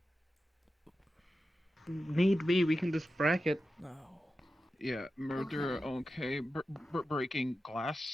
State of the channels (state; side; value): normal; both; correlation 0.92